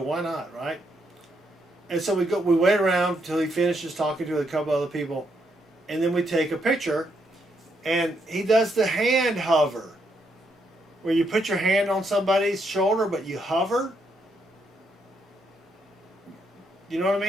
not, right? And so we wait around until he finishes talking to a couple other people, and then we take a picture. And he does the hand hover, where you put your hand on somebody's shoulder but you hover. You know what I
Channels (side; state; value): both; normal; correlation 0.77